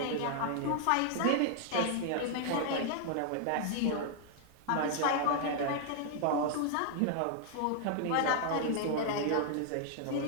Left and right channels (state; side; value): different; both; correlation 0.00